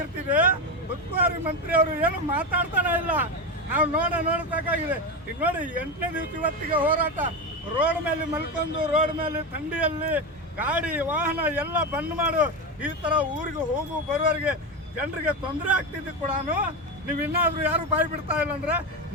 ಉಸ್ತುವಾರಿ ಮಂತ್ರಿ ಅವರು ಏನು ಮಾತಾಡ್ತಾನೆ ಇಲ್ಲ. ನಾವು ನೋಡಬೇಕಾಗಿದೆ. ಈಗ ನೋಡಿ 8ನೇ ದಿವಸ ಇವತ್ತಿಗೆ ಹೋರಾಟ. ರೋಡ್ ಮೇಲೆ ಮಲ್ಕೊಂಡು, ರೋಡ್ ಮೇಲೆ ಥಂಡಿಯಲ್ಲಿ ಗಾಡಿ ವಾಹನ ಎಲ್ಲ ಬಂದ್ ಮಾಡು. ಈ ತರ ಊರಿಗೆ ಹೋಗು ಬರುವವರಿಗೆ ಜನರಿಗೆ ತೊಂದರೆ ಆಗ್ತಿದ್ದು ಕೂಡ ನೀವು ಇನ್ನಾದ್ರೂ ಯಾರು ಬಾಯಿ ಬಿಡ್ತಾ ಇಲ್ಲ ಅಂದ್ರೆ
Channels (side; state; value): both; normal; correlation 0.16